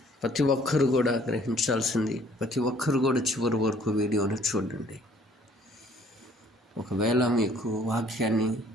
ప్రతి ఒక్కరు కూడా గ్రహించాల్సింది, ప్రతి ఒక్కరు కూడా చివరి వరకు వీడియోని చూడండి. ఒకవేళ మీకు వాక్యాన్ని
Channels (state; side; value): normal; both; correlation 0.59